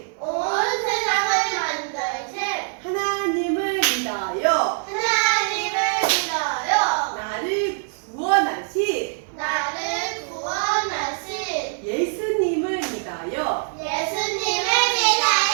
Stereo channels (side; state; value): left; silent; 63 dB below the other